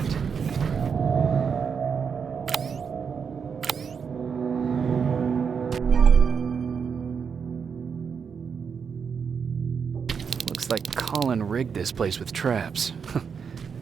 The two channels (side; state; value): left; quieter; 6.4 dB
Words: Looks like Colin rigged this place with traps.